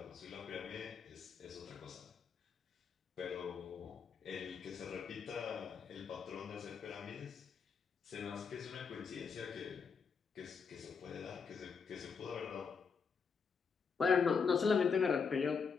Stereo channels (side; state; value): right; quieter; 5.8 dB